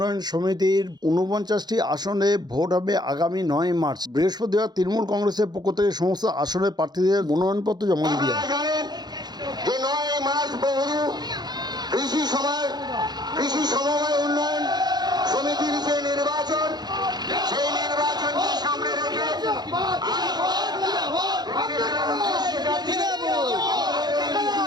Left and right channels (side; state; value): left; late; 0.20 ms